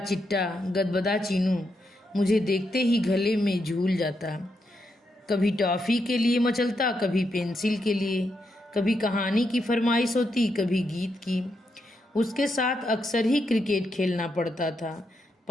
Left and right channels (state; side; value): normal; both; correlation 0.82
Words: गदबदा चीनू मुझे देखते ही गले में झूल जाता। कभी टॉफ़ी के लिए मचलता, कभी पेंसिल के लिए, कभी कहानी की फरमाइश होती, कभी गीत की। उसके साथ अक्सर ही क्रिकेट खेलना पड़ता था।